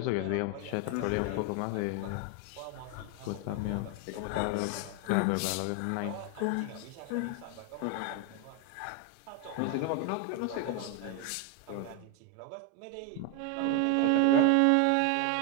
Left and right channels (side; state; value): both; different; correlation 0.01